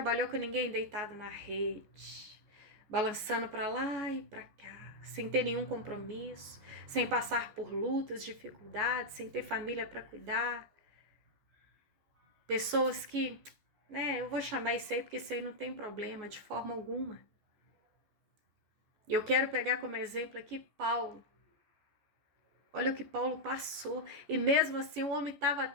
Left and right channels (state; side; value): late; left; 14 ms